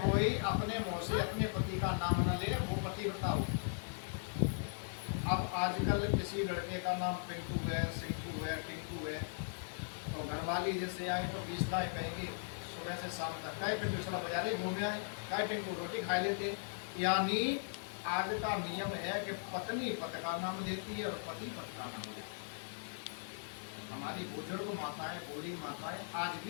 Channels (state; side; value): silent; right; 52 dB below the other